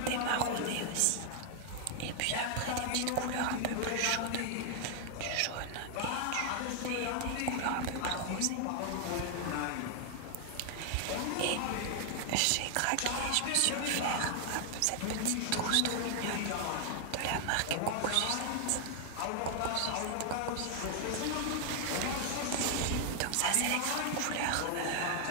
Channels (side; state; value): both; different; correlation 0.00